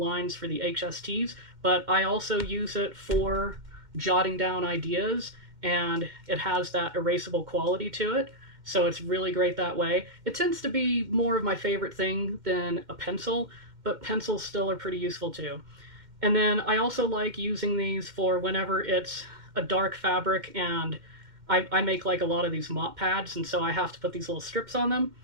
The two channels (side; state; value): left; late; 2.1 ms